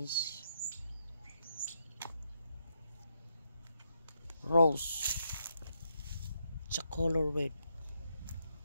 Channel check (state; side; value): inverted; both; correlation -0.78